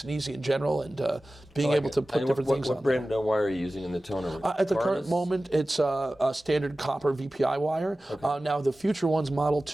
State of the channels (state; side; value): normal; both; correlation 0.96